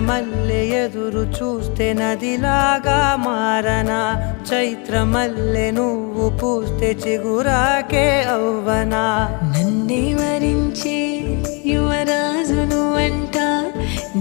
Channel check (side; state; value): right; quieter; 33.3 dB